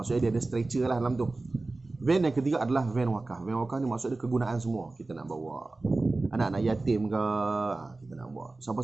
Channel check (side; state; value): left; quieter; 3.3 dB